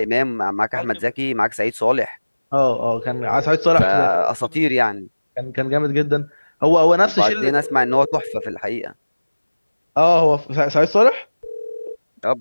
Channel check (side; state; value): both; inverted; correlation -1.00